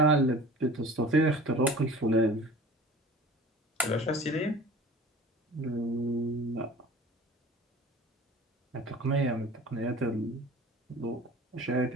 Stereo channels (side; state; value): both; normal; correlation 0.42